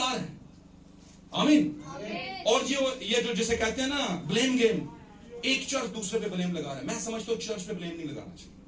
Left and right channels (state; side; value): identical; both; correlation 1.00